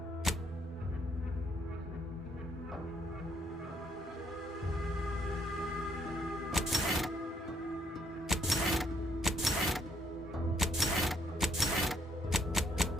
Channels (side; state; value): both; normal; correlation 0.70